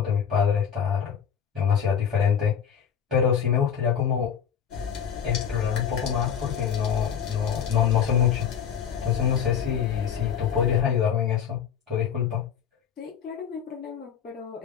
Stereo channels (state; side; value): quieter; right; 8.0 dB